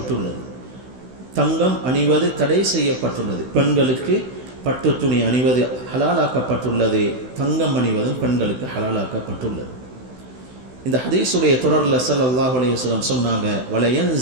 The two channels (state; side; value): late; left; 16 ms